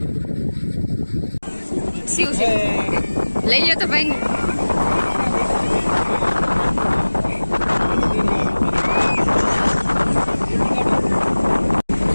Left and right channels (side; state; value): both; inverted; correlation -1.00